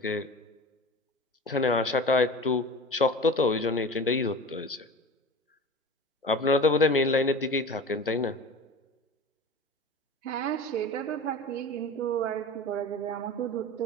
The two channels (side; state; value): both; normal; correlation 0.35